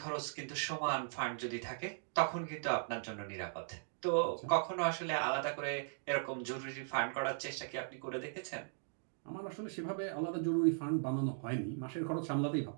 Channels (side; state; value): left; silent; digital silence